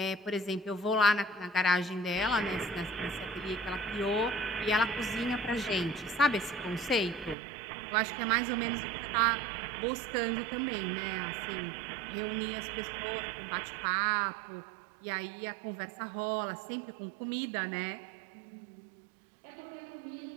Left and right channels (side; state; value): left; drops out; at 7.4 s